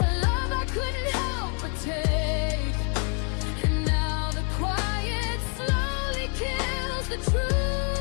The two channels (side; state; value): right; quieter; 39.8 dB